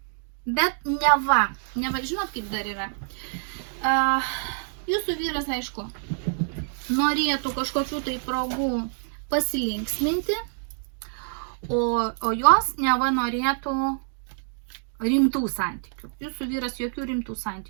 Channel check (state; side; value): silent; left; digital silence